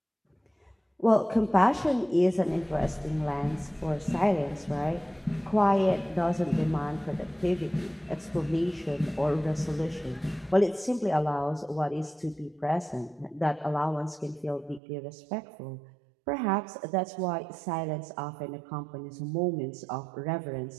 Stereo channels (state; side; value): drops out; left; at 14.8 s